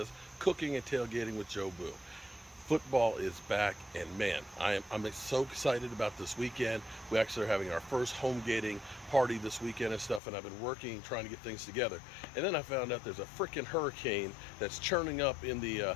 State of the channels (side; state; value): right; drops out; at 10.2 s